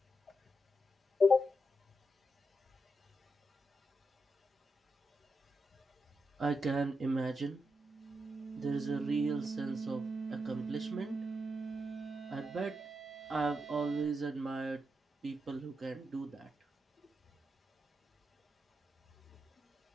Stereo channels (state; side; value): normal; both; correlation 0.84